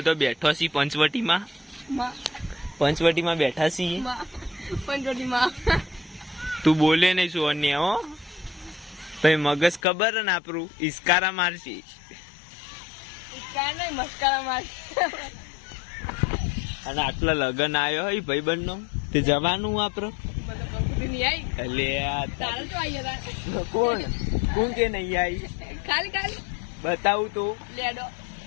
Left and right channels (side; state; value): right; drops out; at 9.8 s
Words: બેઠો છી પંચવટીમાં બેઠા છીએ તું બોલે નહીં શું અન્ય હો ભાઈ મગજ ખબર ને આપણું ઇસ્કારા મારશી અને આટલા લગન આવ્યો હોય ભાઈબંધ નો તે જવાનું આપડે કોણ કે નહીં આવી બતાવું તો